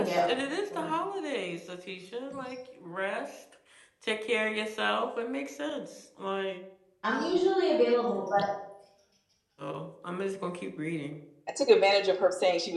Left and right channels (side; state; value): both; identical; correlation 1.00